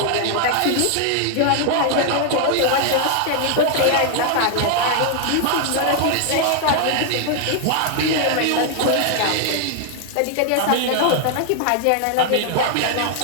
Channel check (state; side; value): different; both; correlation 0.00